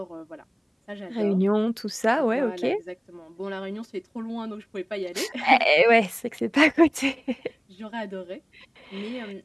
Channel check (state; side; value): identical; both; correlation 1.00